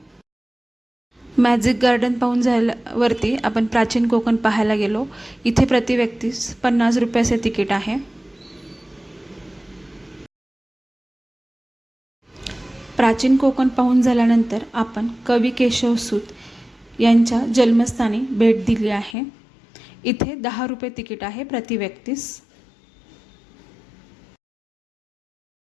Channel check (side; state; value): right; drops out; at 19.2 s